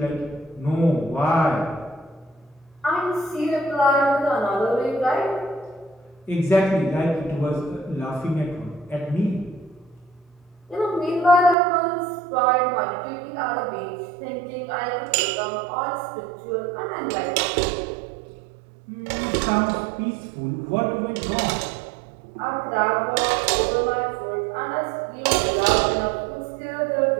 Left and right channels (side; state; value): left; drops out; at 11.6 s